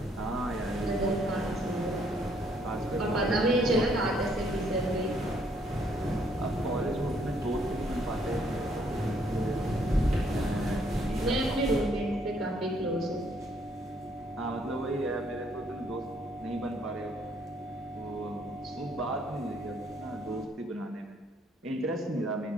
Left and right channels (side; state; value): both; normal; correlation 0.68